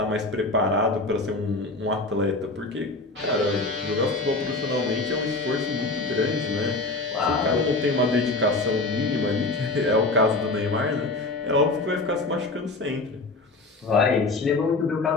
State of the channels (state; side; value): quieter; right; 3.2 dB